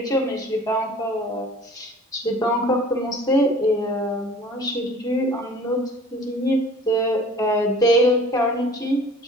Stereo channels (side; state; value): both; normal; correlation 0.47